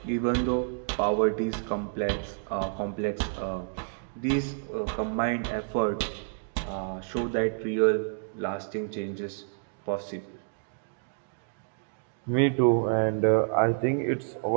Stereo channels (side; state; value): left; silent; digital silence